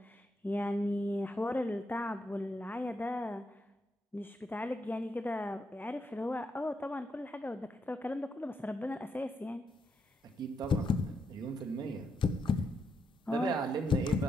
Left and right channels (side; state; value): both; normal; correlation 0.80